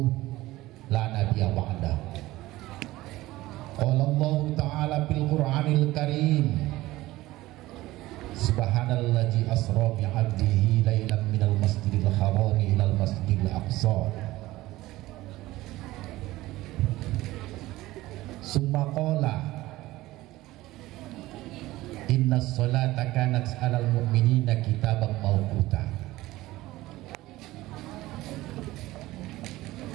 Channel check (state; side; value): quieter; left; 17.7 dB